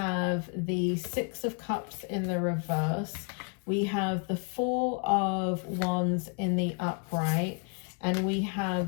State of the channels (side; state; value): right; quieter; 38.8 dB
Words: the 6 of Cups in the reverse, we have the 4 of Wands in the upright, and we